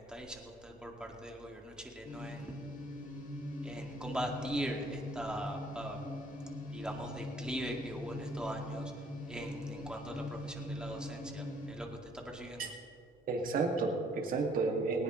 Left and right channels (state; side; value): normal; both; correlation 0.62